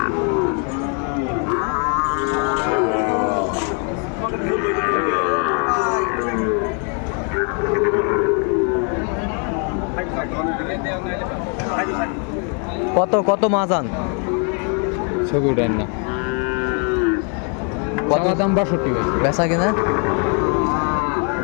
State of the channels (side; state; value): right; quieter; 39.1 dB